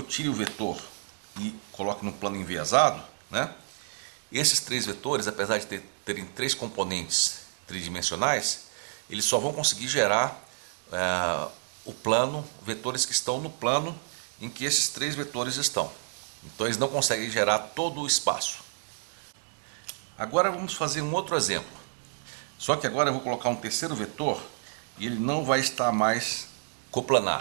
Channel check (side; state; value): left; silent; digital silence